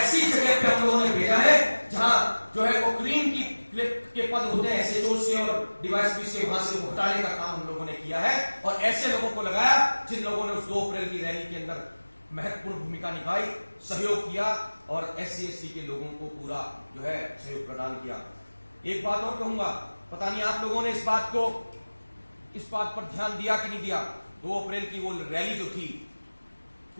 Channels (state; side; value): inverted; both; correlation -1.00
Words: जगह पे हम लोगों ने भेजा है जहां जो है वो क्रीम के पद होते हैं एसएचओस के और डीवाईएसपी से, वहां से हटाने का काम हम लोगों ने किया है और ऐसे लोगों को लगाया जिन लोगों ने उस 2 अप्रैल की रैली के अंदर महत्वपूर्ण भूमिका निभाई, सहयोग किया और SC ST के लोगों को पूरा जो है सहयोग प्रदान किया। एक बात और कहूंगा, पता नहीं आप लोगों ने इस बात पर ध्यान दिया कि नहीं दिया। 2 अप्रैल की वो रैली जो थी